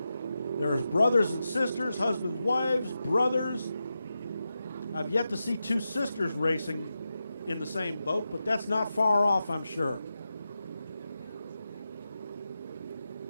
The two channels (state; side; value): inverted; both; correlation -0.90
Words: There's brothers and sisters, husbands, wives, brothers. I've yet to see two sisters racing in the same boat, but that's not far off, I'm sure.